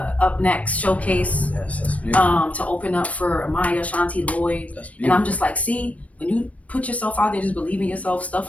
Next showcase. Yes, that's beautiful. To open up for Amaya, Shanti Lloyd. And I'm just like, see, when you put yourself out there, just believe in yourself,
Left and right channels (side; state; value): right; late; 0.066 ms